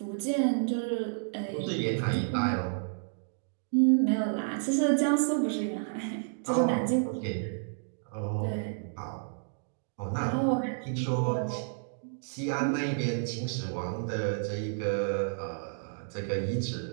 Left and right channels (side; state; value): left; silent; digital silence